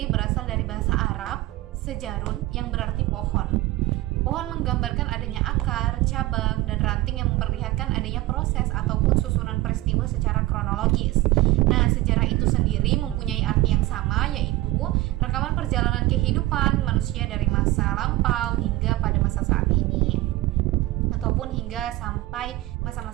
berasal dari bahasa Arab, sejarun, yang berarti pohon. Pohon menggambarkan adanya akar, cabang, dan ranting yang memperlihatkan adanya proses ataupun susunan peristiwa secara kronologis. Nah, sejarah itu sendiri mempunyai arti yang sama, yaitu rekaman perjalanan kehidupan manusia dari masa lampau hingga pada masa saat ini, ataupun hingga sampai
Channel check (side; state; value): left; quieter; 17.9 dB